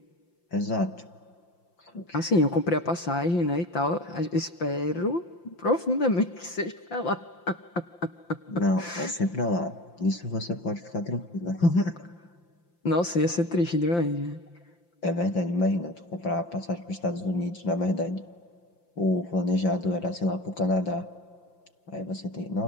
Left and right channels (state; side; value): late; right; 5.8 ms